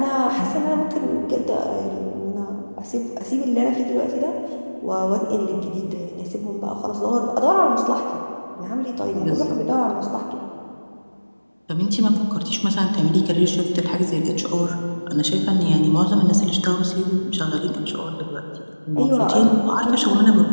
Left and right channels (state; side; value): inverted; both; correlation -1.00